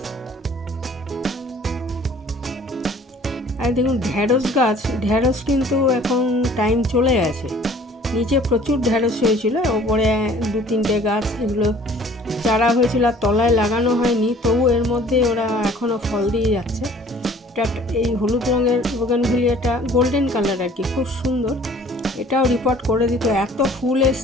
আর দেখুন ঢ্যাঁড়স গাছ, ঢ্যাঁড়স কিন্তু এখন টাইম চলে গেছে। নিচে প্রচুর ঢ্যাঁড়স হয়েছিল, ওপরে 2-3টে গাছ, এগুলো চারা হয়েছিল আর তলায় লাগানো হয়নি, তবু এর মধ্যে ওরা এখনও ফল দিয়ে যাচ্ছে। এই হলুদ রঙের বোগানভিলিয়াটা গোল্ডেন কালার আর কি, খুব সুন্দর। এটাও রিপোর্ট করে দিত, এত ফুল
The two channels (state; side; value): normal; both; correlation 0.52